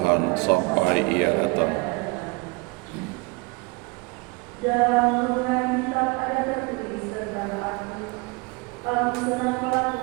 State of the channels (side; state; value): left; quieter; 27.6 dB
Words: sampai Ia datang. Dalam hubungan kitab ada tertulis tentang aku senang